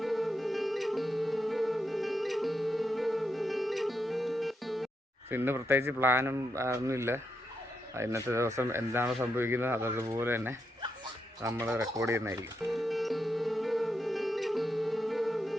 ഇന്ന് പ്രത്യേകിച്ച് പ്ലാനും ഒന്നുമില്ല. ഇന്നത്തെ ദിവസം എന്താണ് സംഭവിക്കുന്നത് അതതുപോലെ തന്നെ നമ്മൾ റെക്കോർഡ് ചെയ്യുന്നതായിരിക്കും.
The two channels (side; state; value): both; normal; correlation 0.83